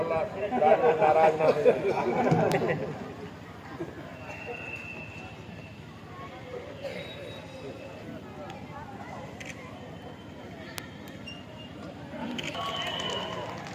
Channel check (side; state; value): both; identical; correlation 1.00